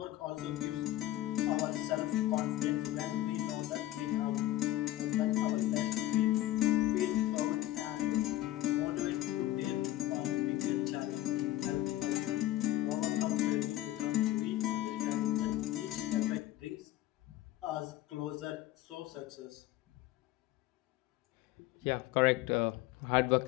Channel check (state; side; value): quieter; right; 15.1 dB